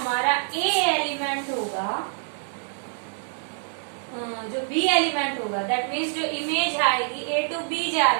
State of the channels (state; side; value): silent; left; digital silence